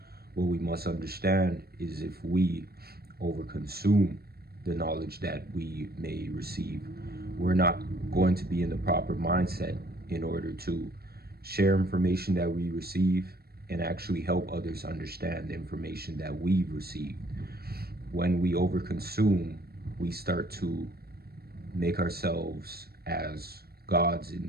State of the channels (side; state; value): left; late; 0.45 ms